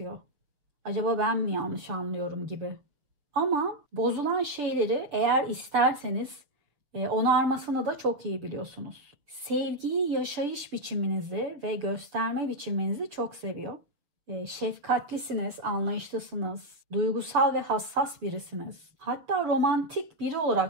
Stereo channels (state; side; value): late; left; 6.8 ms